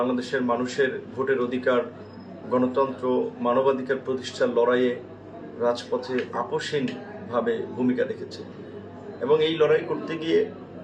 মানুষের ভোটের অধিকার, গণতন্ত্র, মানবাধিকার প্রতিষ্ঠার লড়াইয়ে রাজপথে আপোষহীনভাবে ভূমিকা রেখেছে এবং এই লড়াই করতে গিয়ে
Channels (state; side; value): identical; both; correlation 1.00